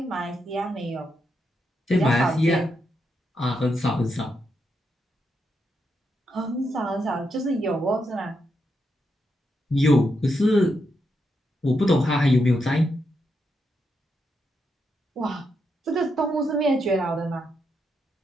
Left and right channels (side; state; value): both; normal; correlation 0.82